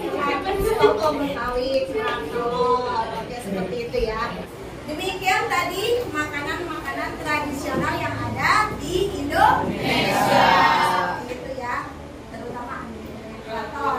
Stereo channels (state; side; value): identical; both; correlation 1.00